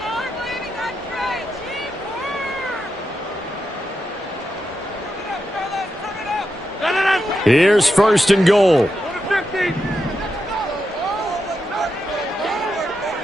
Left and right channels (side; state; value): both; normal; correlation 0.86